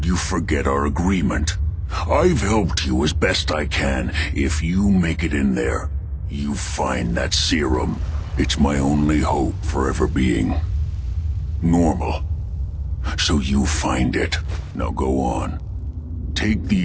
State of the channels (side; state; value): both; identical; correlation 1.00